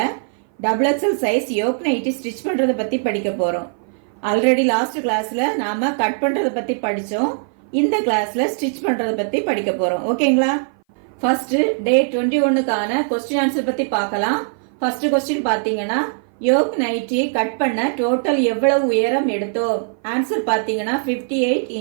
XXL size yoke nightie stitch பண்றத பத்தி படிக்க போறோம். ஆல்ரெடி லாஸ்ட் கிளாஸ்ல நாம கட் பண்றத பத்தி படிச்சோம். இந்த கிளாஸ்ல ஸ்டிச் பண்றத பத்தி படிக்க போறோம். ஓகேங்களா? ஃபர்ஸ்ட் டே 21க்கான क्वेश्चन ஆன்சர் பத்தி பார்க்கலாம். ஃபர்ஸ்ட் क्वेश्चन பாத்தீங்கன்னா யோக் நைட்டி கட் பண்ண டோட்டல் எவ்வளவு உயரம் எடுத்தோம்? ஆன்சர் பாத்தீங்கன்னா 58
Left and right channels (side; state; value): left; silent; 58 dB below the other